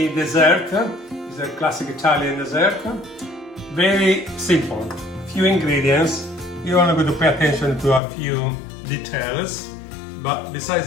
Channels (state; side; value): drops out; right; at 8.0 s